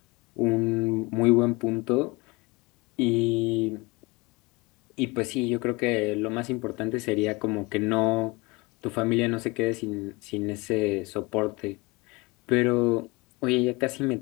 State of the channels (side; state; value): right; quieter; 25.2 dB